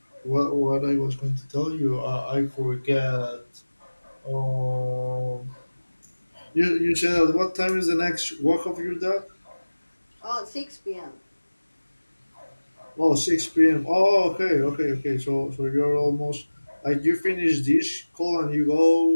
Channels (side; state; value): both; inverted; correlation -1.00